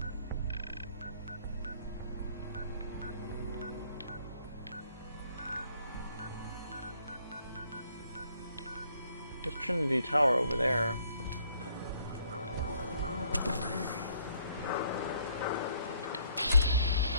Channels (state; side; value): inverted; both; correlation -0.65